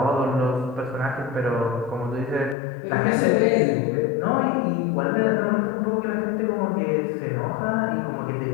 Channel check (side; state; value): right; drops out; at 2.6 s